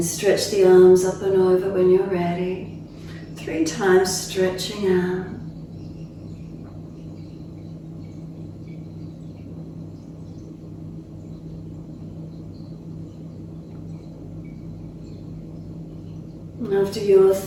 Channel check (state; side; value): identical; both; correlation 1.00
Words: stretch the arms up and over when you're ready. 3 times stretching out. And After your